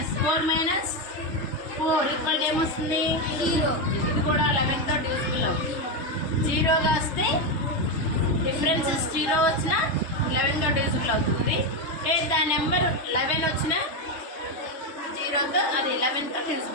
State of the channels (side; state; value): right; late; 3.3 ms